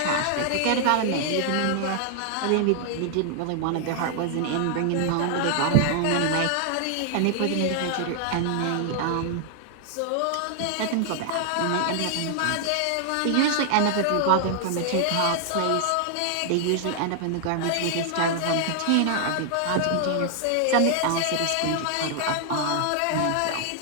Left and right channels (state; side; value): different; both; correlation 0.00